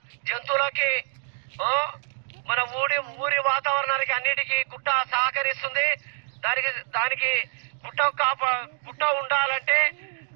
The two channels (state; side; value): silent; left; 61 dB below the other